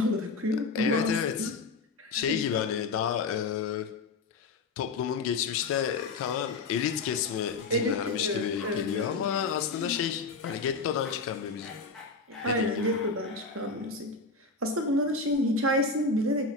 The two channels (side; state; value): right; quieter; 4.0 dB